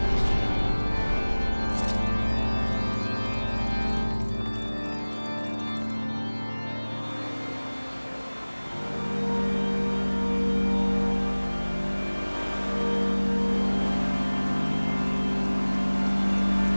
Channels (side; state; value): both; inverted; correlation -1.00